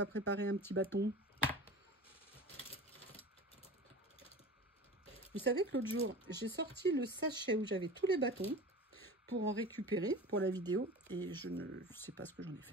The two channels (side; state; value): both; normal; correlation 0.35